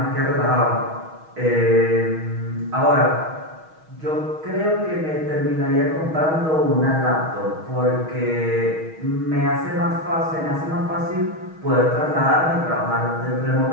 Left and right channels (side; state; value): left; late; 6.3 ms